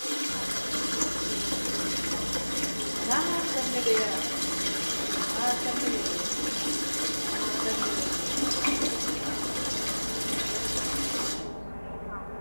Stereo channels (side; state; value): both; inverted; correlation -1.00